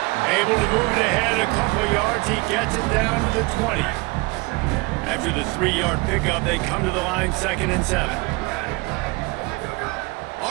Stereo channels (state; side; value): quieter; left; 25.8 dB